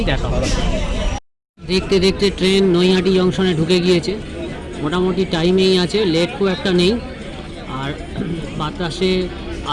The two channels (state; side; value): identical; both; correlation 1.00